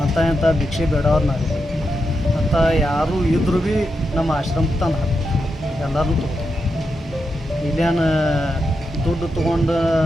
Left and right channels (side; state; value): both; normal; correlation 0.86